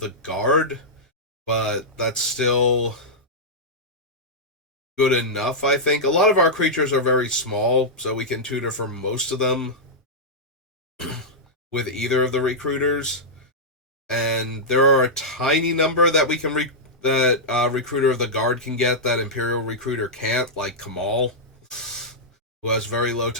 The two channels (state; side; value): normal; both; correlation -0.09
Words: guard, but that's still good enough, I think. A lot of our creatures are very small, so we can tutor for most of them with either of the recruiters. And there are a tiny number that we can Recruiter of the Guard can get that Imperial Recruiter can't, like Kamal, who has very low